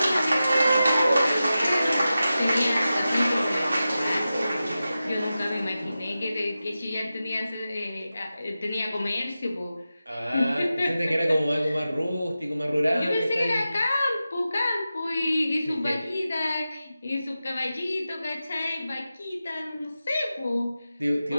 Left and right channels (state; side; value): inverted; both; correlation -0.93